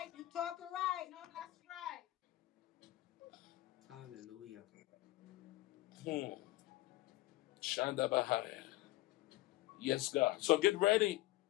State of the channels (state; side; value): quieter; right; 17.6 dB